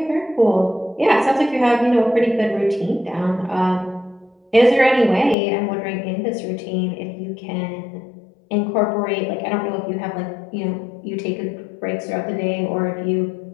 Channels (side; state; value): right; drops out; at 5.4 s